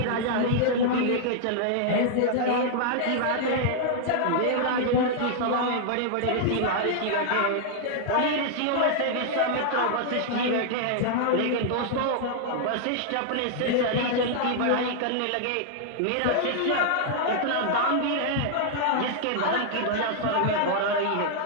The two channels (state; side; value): different; both; correlation -0.01